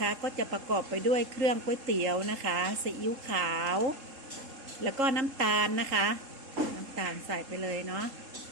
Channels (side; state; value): left; late; 3.7 ms